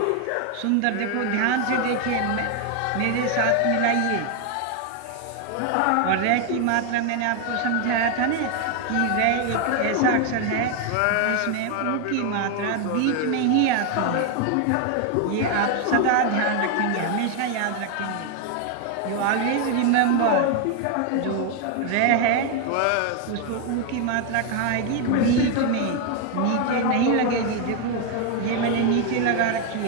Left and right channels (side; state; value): both; different; correlation 0.01